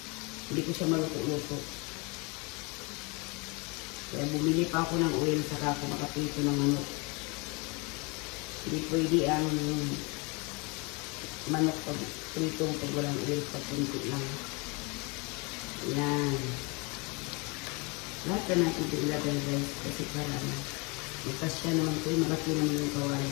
hindi ko siya maluto-luto. Kaya bumili pa ako ng oil saka ako makaprito ng manok. Hindi pwede ang manok pag prito pag walang oil, pag kunti lang. Yan. Lahat na natin ito ilagay guys kasi para magkasya naman ito. Malaki naman yung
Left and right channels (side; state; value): right; quieter; 29.4 dB